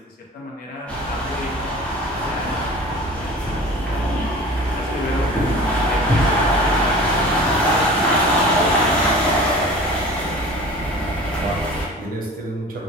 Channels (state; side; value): normal; both; correlation 0.41